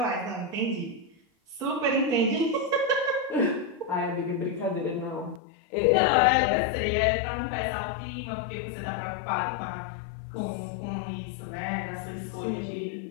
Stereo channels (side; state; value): right; drops out; at 5.4 s